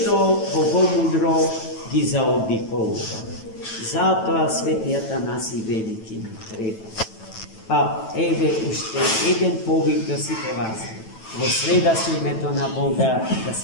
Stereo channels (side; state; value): right; late; 9.1 ms